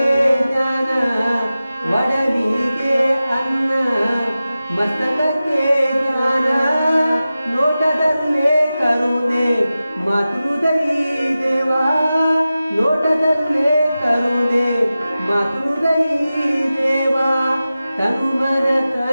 ಜ್ಞಾನ ಒಡಲಿಗೆ ಅನ್ನ ಮಸ್ತಕಕ್ಕೆ ಜ್ಞಾನ ನೋಟದಲ್ಲೇ ಕರುಣೆ ಮಾತೃದೈ ದೇವಾ ನೋಟದಲ್ಲೇ ಕರುಣೆ ಮಾತೃದೈ ದೇವಾ ತನುಮನ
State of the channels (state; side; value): inverted; both; correlation -0.94